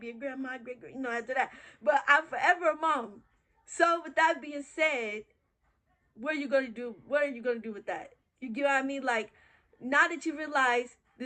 a grandma, great, after that. But I'm forever a mom. So with that being said, what are you going to do? What are you going to do with that? You get what I mean? Like, now that you realize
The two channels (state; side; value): identical; both; correlation 1.00